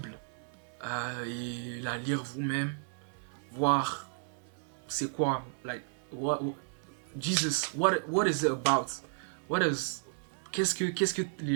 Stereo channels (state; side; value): silent; left; 56 dB below the other